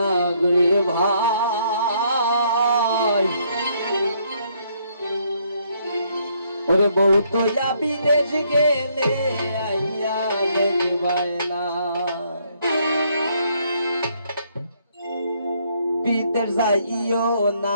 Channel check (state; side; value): inverted; both; correlation -0.69